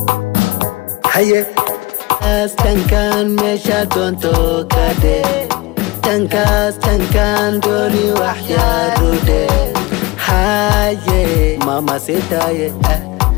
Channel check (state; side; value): quieter; right; 23.2 dB